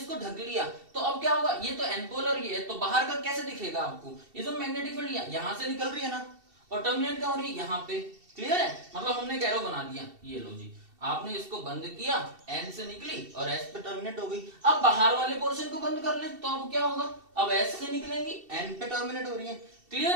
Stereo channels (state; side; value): late; left; 2.7 ms